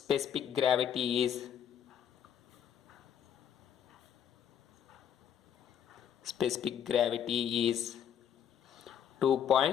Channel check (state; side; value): quieter; right; 9.0 dB